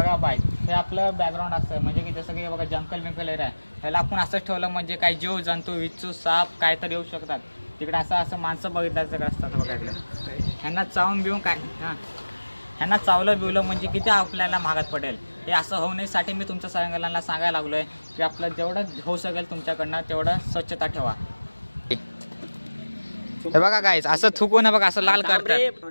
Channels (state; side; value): inverted; both; correlation -1.00